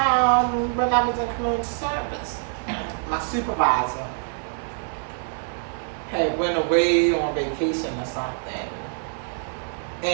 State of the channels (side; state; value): left; silent; 62 dB below the other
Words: When I was in community service, my supervisor had went away on vacation or something,